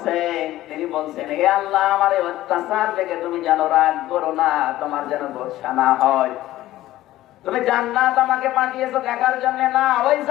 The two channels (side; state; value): right; quieter; 15.2 dB